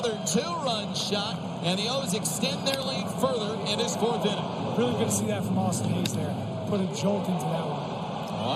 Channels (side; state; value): both; identical; correlation 1.00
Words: 2-run shot, and the O's extend their lead further in this 4th inning. Really good to see that from Austin Hayes there. Put a jolt into that one.